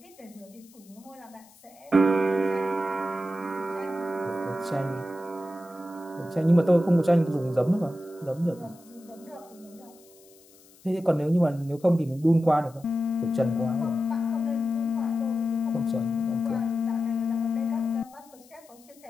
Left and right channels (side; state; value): left; noise; hiss, 26 dB below the sound